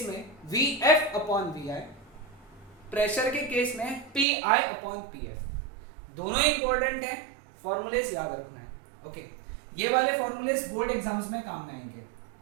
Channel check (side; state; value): left; drops out; at 4.2 s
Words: में VF अपॉन VI, प्रेशर के केस में PI अपॉन PF। दोनों important है, फॉर्मूलेस याद रखना है। ओके, ये वाले फॉर्मूलेस बोर्ड एग्जाम्स में काम में आएंगे।